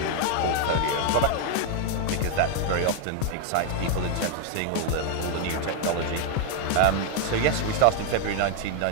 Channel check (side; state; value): both; different; correlation 0.00